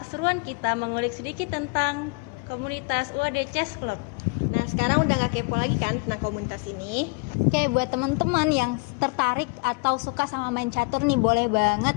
kita mengulik sedikit tentang komunitas UAD Chess Club. Nah, sekarang udah nggak kepo lagi kan tentang komunitas ini? Oke, buat teman-teman yang tertarik atau suka sama main catur nih, boleh banget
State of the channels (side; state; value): right; quieter; 29.8 dB